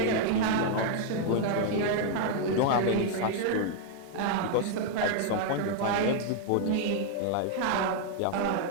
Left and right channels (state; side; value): different; both; correlation 0.00